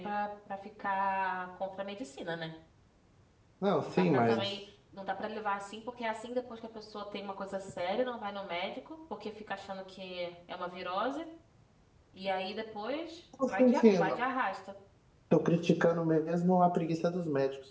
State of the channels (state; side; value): identical; both; correlation 1.00